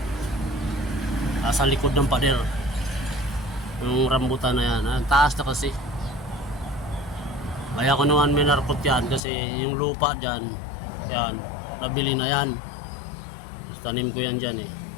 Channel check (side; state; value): right; drops out; at 9.2 s